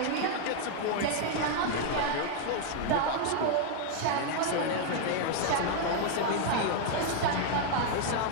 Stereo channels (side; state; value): both; different; correlation 0.00